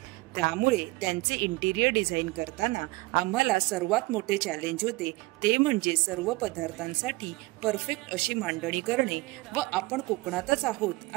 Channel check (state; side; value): quieter; left; 22.5 dB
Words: त्यामुळे त्यांचे इंटिरियर डिझाईन करताना आम्हाला सर्वात मोठे चॅलेंज होते ते म्हणजे सर्व पदार्थांसाठी परफेक्ट अशी मांडणी करणे व आपण कोकणातच आहोत